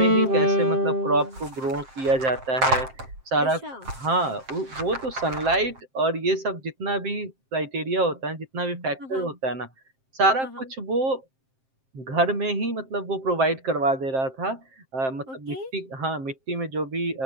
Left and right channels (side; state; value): left; late; 7.6 ms